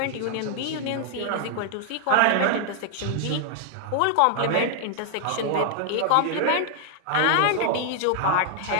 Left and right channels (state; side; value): different; both; correlation 0.00